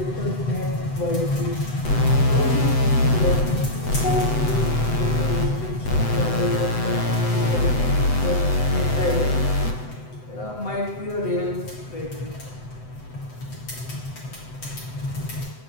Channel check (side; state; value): right; late; 7.9 ms